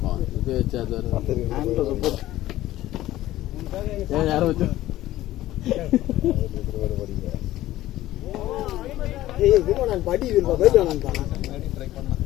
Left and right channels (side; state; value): right; quieter; 15.1 dB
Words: இப்போ வச்சு அது யாரும் வச்சு